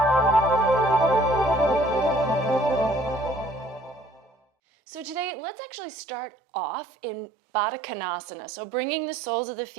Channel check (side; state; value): left; drops out; at 5.3 s